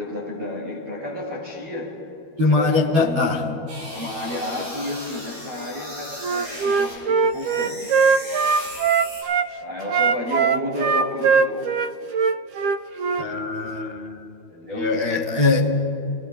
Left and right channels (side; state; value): left; late; 12 ms